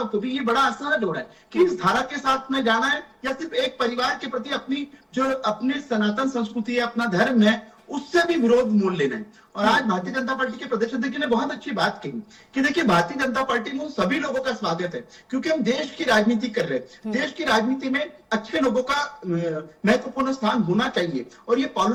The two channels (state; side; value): identical; both; correlation 1.00